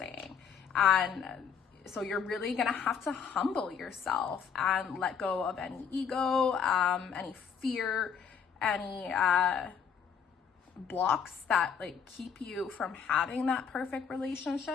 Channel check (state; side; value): quieter; right; 7.0 dB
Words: And so you're really gonna have to humble yourself and let go of any ego, any fear, any blocks that like keep you from having that perfect